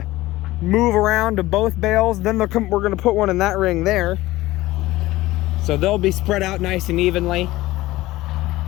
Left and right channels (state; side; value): quieter; right; 17.8 dB